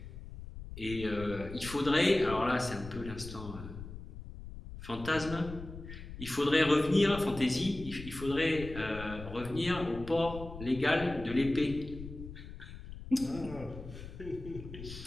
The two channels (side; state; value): left; noise; rumble, 12 dB below the sound